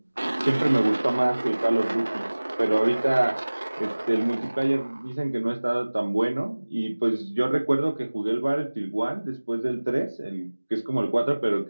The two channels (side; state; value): both; inverted; correlation -1.00